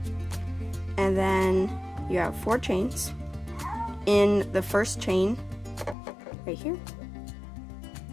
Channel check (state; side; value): drops out; right; at 6.0 s